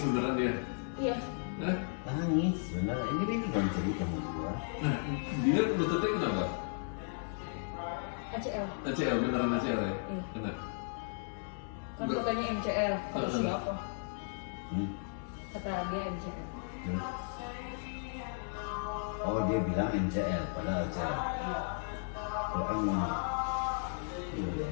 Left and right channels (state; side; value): silent; right; digital silence